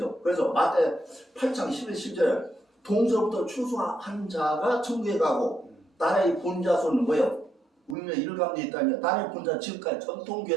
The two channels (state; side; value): drops out; left; at 8.0 s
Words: 그래서 마태 8장 11, 10절 동서부터 추수한 자가 천국에 가고 나라의 본자손은 뭐예요? 울며 일감돼 있다니 나라의 본자 지금까지